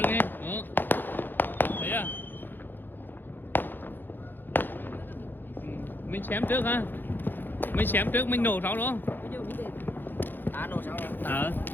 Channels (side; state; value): right; late; 0.093 ms